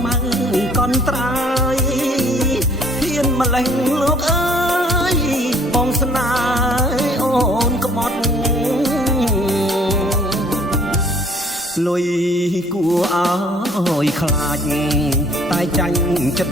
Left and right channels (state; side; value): normal; both; correlation 0.58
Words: មៅកនត្រាយហ៊ានម្លេះលោកអើយបងស្នេហ៍អូនក្បត់លុយគួរឲ្យខ្លាចតែចាញ់ចិត្